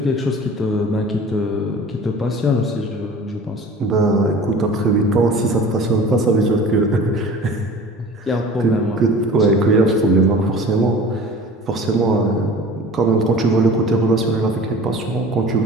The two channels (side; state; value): both; normal; correlation 0.42